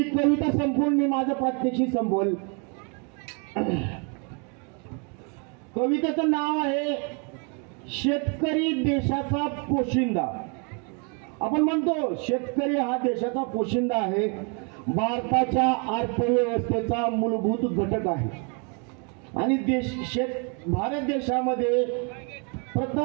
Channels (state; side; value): quieter; left; 35.9 dB